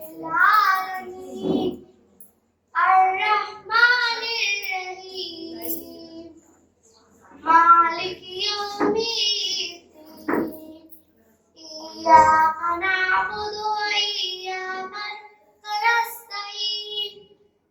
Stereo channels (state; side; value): identical; both; correlation 1.00